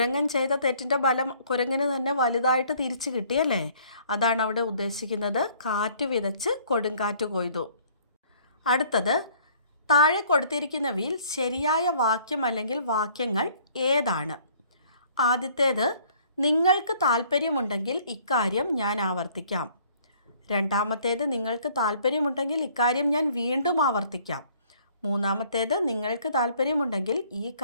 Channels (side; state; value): both; inverted; correlation -0.58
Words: ചെയ്ത തെറ്റിൻ്റെ ഫലം കുരങ്ങന് തന്നെ വലുതായിട്ട് തിരിച്ചു കിട്ടിയല്ലേ? അതാണ് അവിടെ ഉദ്ദേശിക്കുന്നത്. കാറ്റ് വിതച്ച് കൊടുങ്കാറ്റ് കൊയ്തു. അടുത്തത്, താഴെ കൊടുത്തിരിക്കുന്നവയിൽ ശരിയായ വാക്യം അല്ലെങ്കിൽ വാക്യങ്ങൾ ഏതാണ്? ആദ്യത്തേത്, നിങ്ങൾക്ക് താല്പര്യമുണ്ടെങ്കിൽ ഇക്കാര്യം ഞാൻ ആവർത്തിക്കാം. രണ്ടാമത്തേത്, നിങ്ങൾക്ക് താല്പര്യമുണ്ടെങ്കിൽ ഇക്കാര്യം ഞാൻ വീണ്ടും ആവർത്തിക്കാം. മൂന്നാമത്തേത്, നിങ്ങൾക്ക് താല്പര്യമുണ്ടെങ്കിൽ ഈ